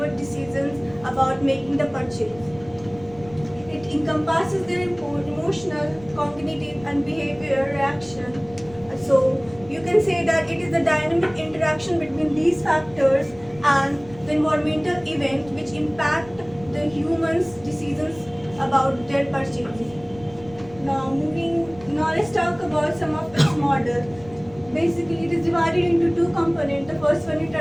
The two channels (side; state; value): left; noise; rumble, 21 dB below the sound